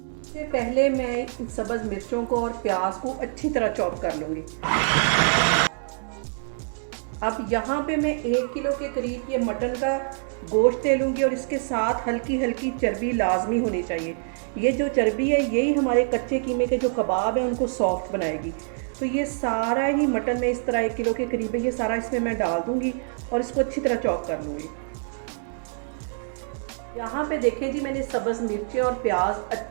इससे पहले मैं इन सब्ज़ मिर्चों को और प्याज को अच्छी तरह चॉप कर लूँगी। अब यहाँ पे मैं 1 किलो के करीब ये मटन का गोश्त ले लूँगी और इसके साथ हल्की हल्की चर्बी लाजमी होनी चाहिए। ये जो चर्बी है यही हमारे कच्चे कीमे के जो कबाब हैं उनको सॉफ्ट बनाएगी। तो ये सारा ही मटन में इस तरह 1 किलो के करीब है, ये सारा इसमें मैं डाल दूँगी और इसको अच्छी तरह चॉप कर लूँगी। यहाँ पे देखें जी, मैंने सब्ज़ मिर्चें और प्याज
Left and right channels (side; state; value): left; silent; 61 dB below the other